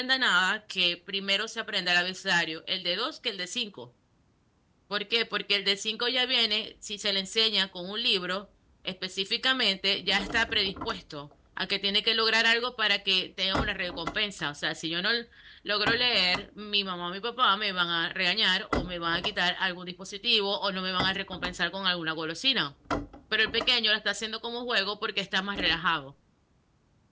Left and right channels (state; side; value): identical; both; correlation 1.00